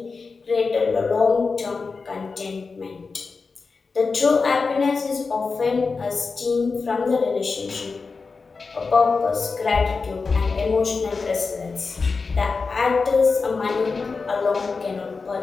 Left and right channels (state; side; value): quieter; right; 4.5 dB